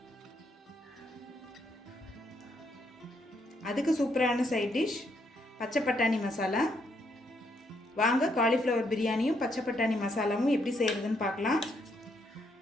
அதுக்கு சூப்பரான சைட் டிஷ் பச்சை பட்டாணி மசாலா. வாங்க காலிஃப்ளவர் பிரியாணியும் பச்சை பட்டாணி மசாலாவும் எப்படி செய்கிறதுன்னு பார்க்கலாம்.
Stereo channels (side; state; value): both; normal; correlation 0.75